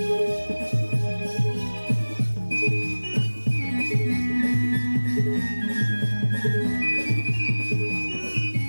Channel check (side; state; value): both; inverted; correlation -1.00